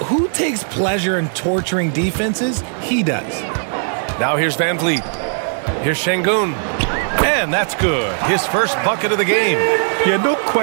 who takes pleasure in torturing defenses? He does. Now here's Van Vliet. Here's Şengün. And that's good. His first bucket of the game. Yeah, no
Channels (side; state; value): left; silent; digital silence